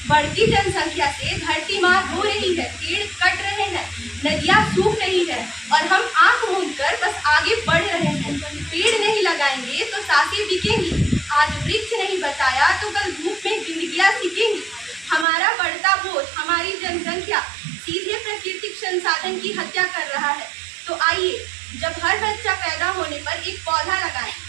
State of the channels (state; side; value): drops out; left; at 15.2 s